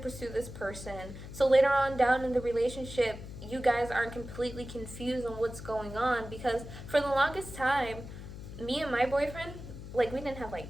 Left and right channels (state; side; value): noise; left; hum, 12 dB below the sound